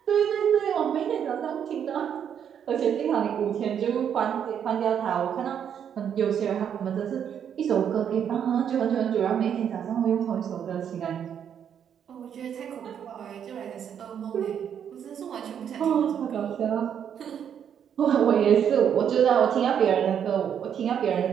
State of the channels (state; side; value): quieter; left; 8.5 dB